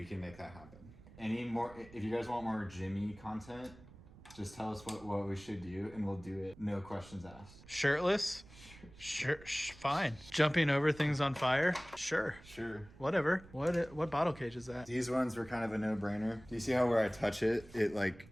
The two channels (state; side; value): noise; right; rumble, 20 dB below the sound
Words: can make that happen. Any more, if you guys want more Jimmy content, just tell us what we should do and we'll do it. No questions asked. Shirtless? Sure, fine. Jumping over things on fire? Sure. Sure. Whatever. What bottle cage is that? These ones were kind of a no-brainer. Do you see how where I touch it, it like